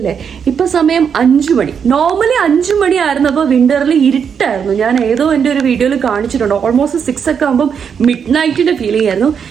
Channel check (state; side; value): quieter; left; 7.1 dB